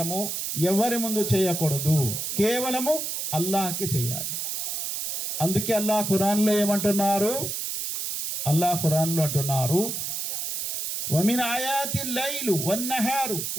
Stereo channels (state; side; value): noise; right; hiss, 3 dB below the sound